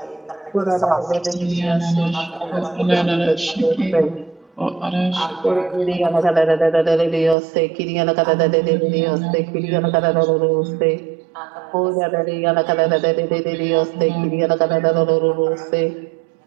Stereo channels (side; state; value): left; drops out; at 7.4 s